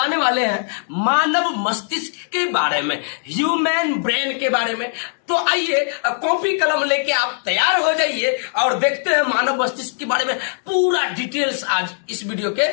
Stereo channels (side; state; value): right; silent; digital silence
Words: वाले हैं मानव मस्तिष्क के बारे में, ह्यूमन ब्रेन के बारे में। तो आइए कॉपी कलम लेके आप तैयार हो जाइए और देखते हैं मानव मस्तिष्क के बारे में पूरा डिटेल्स आज इस वीडियो